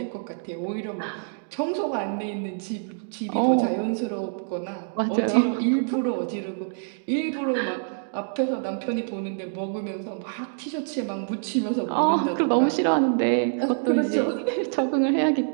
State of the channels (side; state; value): left; silent; digital silence